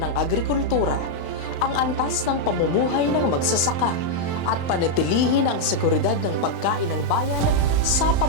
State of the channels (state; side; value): late; right; 35 ms